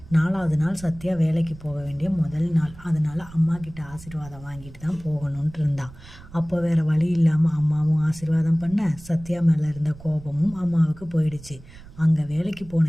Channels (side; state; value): right; noise; rumble, 19 dB below the sound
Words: 4வது நாள் சத்யா வேலைக்கு போக வேண்டிய முதல் நாள். அதனால் அம்மா கிட்ட ஆசீர்வாதம் வாங்கிட்டு தான் போகணுன்ட்டு இருந்தான். அப்போ வேறு வழி இல்லாமல் அம்மாவும் ஆசீர்வாதம் பண்ண சத்யா மேலே இருந்த கோபமும் அம்மாவுக்கு போயிடுச்சு. அங்கே வேலைக்கு